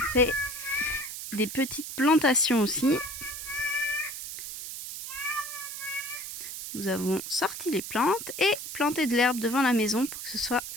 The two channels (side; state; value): right; noise; hiss, 8 dB below the sound